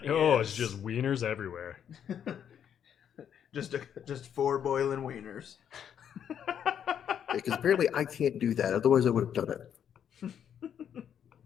Oh, it's yes. just wieners everywhere. just 4 boiling wieners. Because apparently I can't do that. Otherwise, I would have done it.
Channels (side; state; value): right; quieter; 8.8 dB